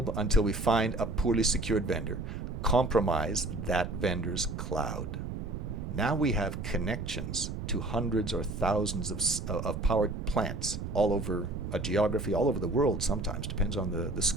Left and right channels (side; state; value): right; noise; rumble, 6 dB below the sound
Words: until we find a poorly secured vendor. Compromise that vendor's cloud. Now we have connections to hundreds or thousands of powered plants all over a geography, all over the world sometimes, depends on the